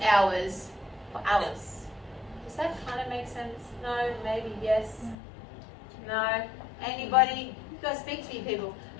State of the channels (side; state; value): right; drops out; at 5.2 s